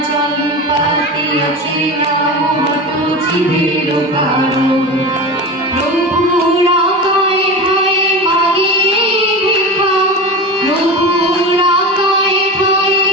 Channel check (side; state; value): both; normal; correlation 0.27